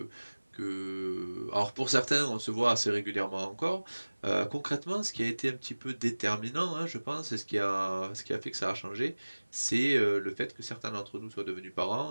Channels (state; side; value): inverted; both; correlation -1.00